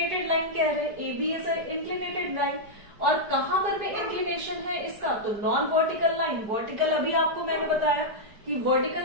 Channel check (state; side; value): late; left; 4.9 ms